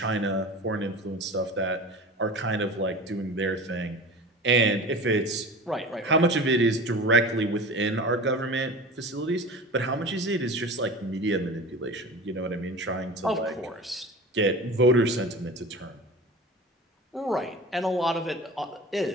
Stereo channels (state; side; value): normal; both; correlation 0.35